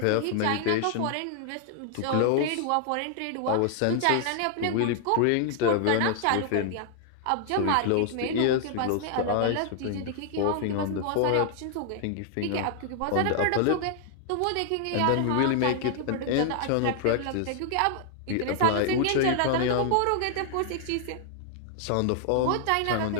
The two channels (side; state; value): both; different; correlation 0.00